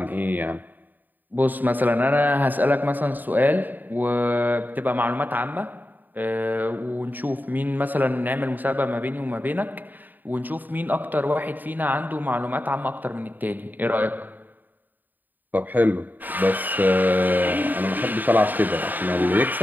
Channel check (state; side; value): late; left; 0.087 ms